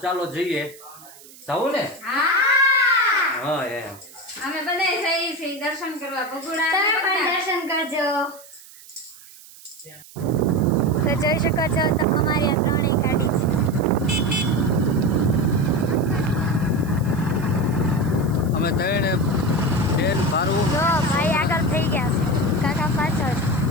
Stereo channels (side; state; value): right; noise; hiss, 21 dB below the sound